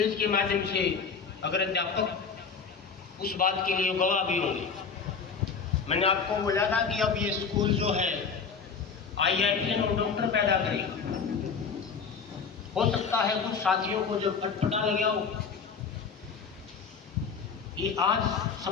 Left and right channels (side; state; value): right; quieter; 5.7 dB